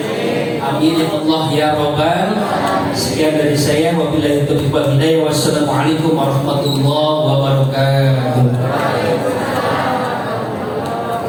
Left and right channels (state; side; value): identical; both; correlation 1.00